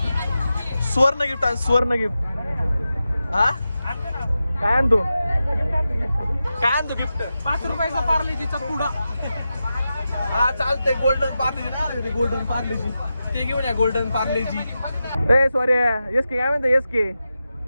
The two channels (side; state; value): both; inverted; correlation -0.91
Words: सुवर्ण गिफ्ट आणि सुवर्ण गिफ्ट हा काय आणतो गिफ्ट 5 रुपयाचा पार्लेजीचा पुडा. हा चालतंय. गोल्डन पार्लेजी ना गोल्डन पार्लेजी ते घेऊन या. गोल्डन पार्लेजी ए सॉरी एस के काय म्हणतो एस के